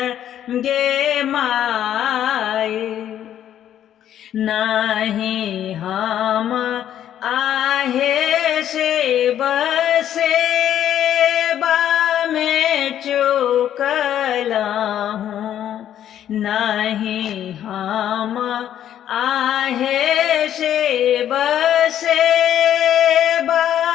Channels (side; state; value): right; quieter; 10.7 dB